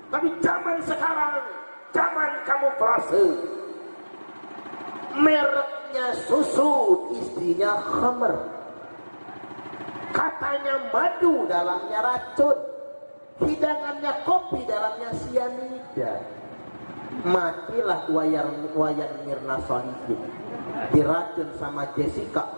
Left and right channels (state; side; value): inverted; both; correlation -1.00